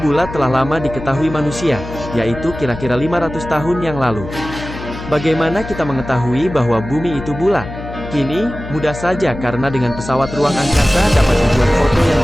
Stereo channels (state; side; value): noise; left; hum, 11 dB below the sound